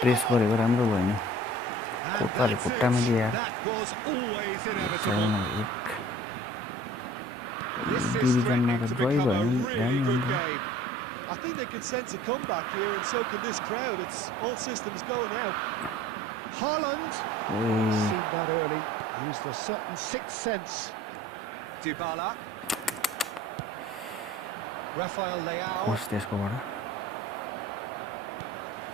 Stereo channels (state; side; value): normal; both; correlation 0.47